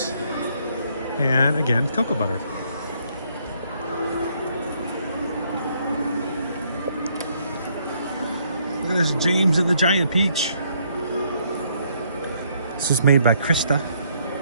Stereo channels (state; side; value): inverted; both; correlation -0.69